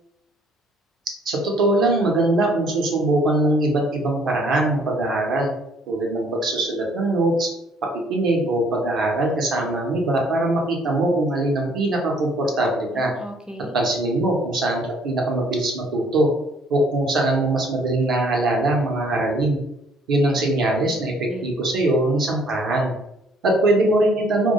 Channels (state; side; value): normal; both; correlation 0.62